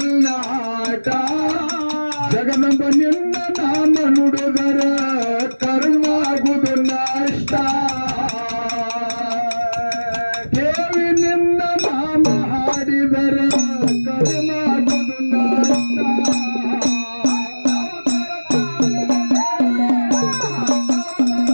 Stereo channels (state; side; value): inverted; both; correlation -1.00